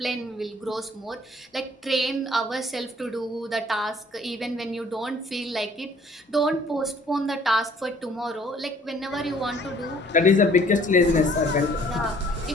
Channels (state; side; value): normal; both; correlation 0.57